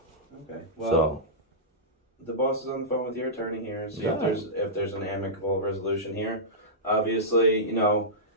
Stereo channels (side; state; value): both; normal; correlation -0.13